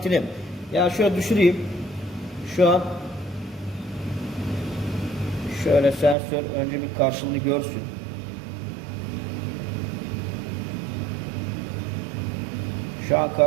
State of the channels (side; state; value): left; drops out; at 6.2 s